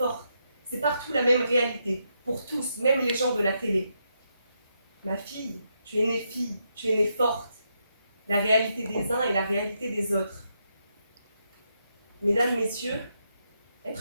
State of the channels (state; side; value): inverted; both; correlation -0.81